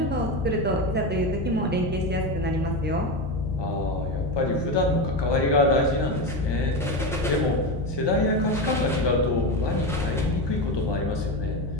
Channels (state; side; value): normal; both; correlation 0.18